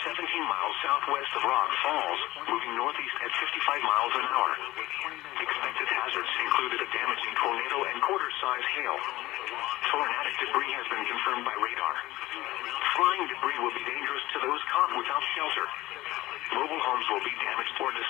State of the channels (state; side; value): quieter; right; 17.6 dB